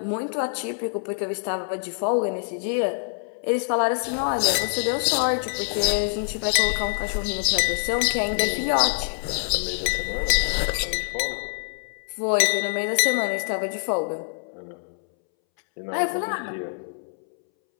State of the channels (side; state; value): right; silent; 62 dB below the other